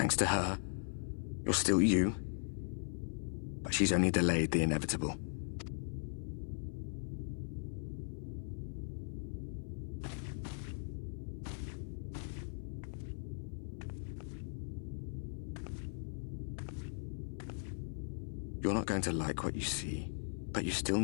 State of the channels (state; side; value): silent; right; 52 dB below the other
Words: to her, you're still you, but she's only delayed the inevitable. You're not going to like what you see, but you still